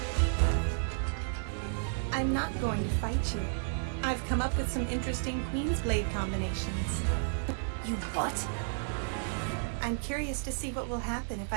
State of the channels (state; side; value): silent; left; 56 dB below the other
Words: I'm not going to fight you. I've come up with some interesting Queen's Blade combinations. You what? I'm curious to see what will happen if